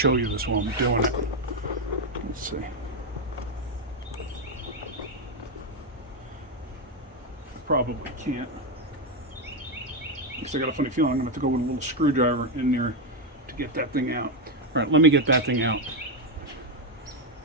you this while I'm doing it. Let's see. Probably can't. Because I got a funny feeling I'm going to have to go with a little screwdriver in there to get that thing out. All right, let me get that thing out.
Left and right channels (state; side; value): normal; both; correlation 0.05